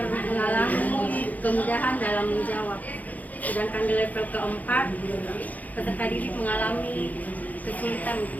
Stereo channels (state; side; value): late; right; 0.079 ms